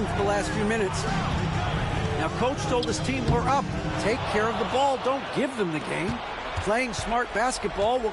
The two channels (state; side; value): identical; both; correlation 1.00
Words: for the last few minutes. Now, Coach told his team, we're up. Take care of the ball. Don't give them the game. Playing smart basketball will